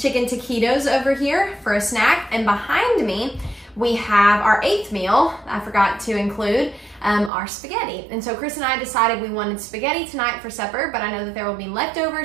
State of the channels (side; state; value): left; drops out; at 7.3 s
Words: taquitos over here for a snack. And behind me, we have our 8th meal, I forgot to include, our spaghetti. And so Chris and I decided we wanted spaghetti tonight for supper, but I know that there will be